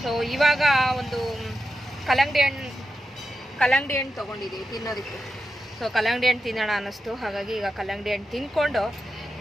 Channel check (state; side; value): normal; both; correlation 0.89